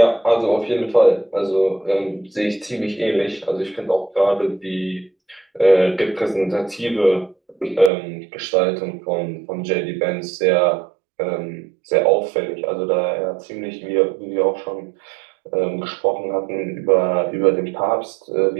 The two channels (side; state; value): left; drops out; at 7.9 s